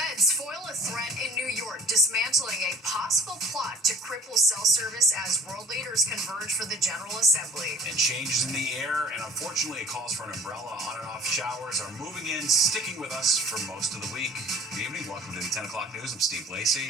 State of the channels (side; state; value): both; normal; correlation 0.47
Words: foil a threat in New York, dismantling a possible plot to cripple cell service as world leaders converge for the General Assembly. And changes in the air, and unfortunately calls for an umbrella. On and off showers are moving in, sticking with us for most of the week. Good evening. Welcome to the 10 o'clock news. I'm Steve Lacey.